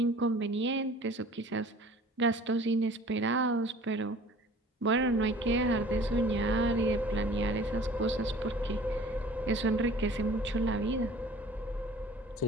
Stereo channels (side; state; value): both; normal; correlation 0.48